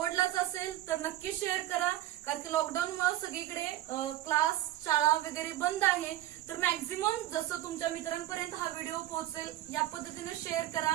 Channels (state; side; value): quieter; left; 14.3 dB